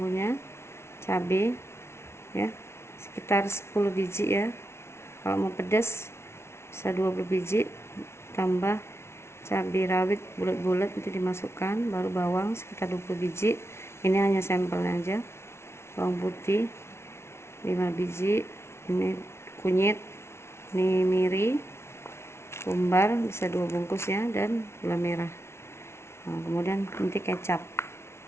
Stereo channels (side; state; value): right; late; 0.13 ms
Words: cabai ya, sekitar 10 biji ya. Kalau mau pedas bisa 20 biji, tambah cabai rawit bulat-bulat nanti dimasukkan, baru bawang sekitar 20 biji. Ini hanya sampelnya aja. Bawang putih 5 biji, ini kunyit, ini miri, kumbar bisa 2 bungkus ya, dan gula merah. Nah, kemudian nanti kecap.